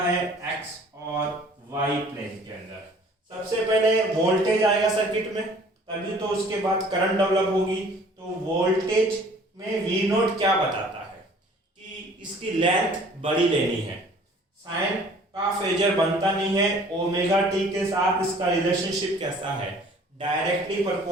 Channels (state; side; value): normal; both; correlation 0.52